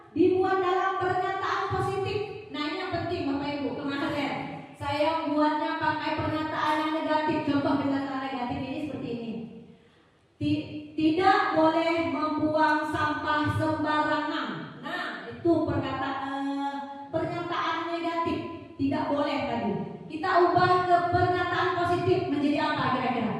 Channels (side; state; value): both; identical; correlation 1.00